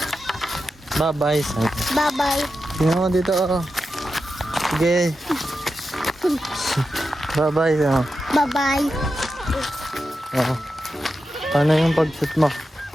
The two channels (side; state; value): both; normal; correlation 0.90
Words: Bye-bye. Bye-bye. Tingnan mo dito oh. Sige. Bye-bye. Oh. Bye-bye. Oh. Paano yung pag-shoot mo?